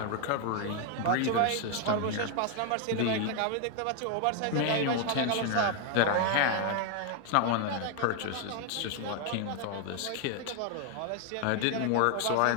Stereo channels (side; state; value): both; different; correlation 0.01